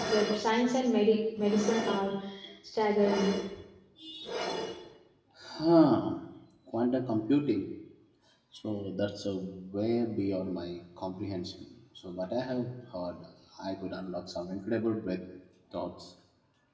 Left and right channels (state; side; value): identical; both; correlation 1.00